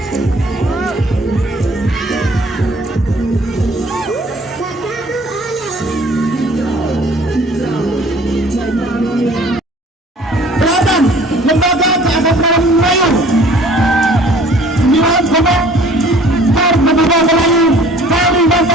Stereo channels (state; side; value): normal; both; correlation 0.53